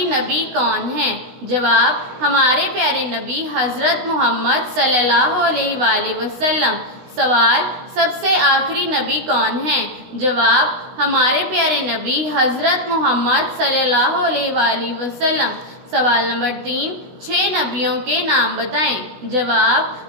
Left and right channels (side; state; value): left; late; 16 ms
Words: نبی کون ہیں؟ جواب، ہمارے پیارے نبی حضرت محمد صلی اللہ علیہ وآلہ وسلم۔ سوال، سب سے آخری نبی کون ہیں؟ جواب، ہمارے پیارے نبی حضرت محمد صلی اللہ علیہ وآلہ وسلم۔ سوال نمبر 3، 6 نبیوں کے نام بتائیں۔ جواب،